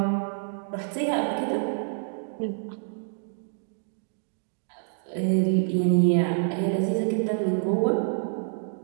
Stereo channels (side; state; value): left; silent; digital silence